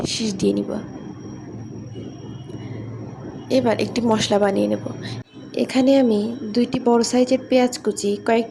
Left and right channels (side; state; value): both; identical; correlation 1.00